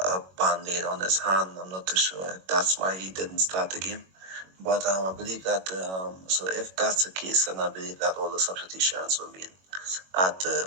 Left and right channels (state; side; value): late; left; 21 ms